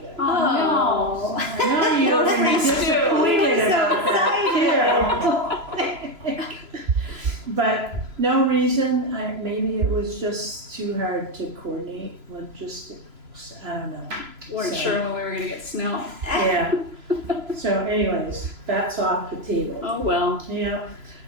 Oh, I know you were disappointed about that too. But no reason, maybe it was just too hard to coordinate I don't know. Weren't So- sure when we were gonna get snow. Yeah. So anyways, that's off the table. Oh, well. Yeah.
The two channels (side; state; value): left; late; 3.0 ms